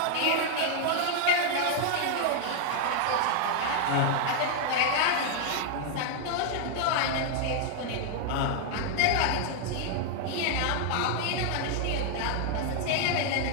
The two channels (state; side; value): different; both; correlation 0.00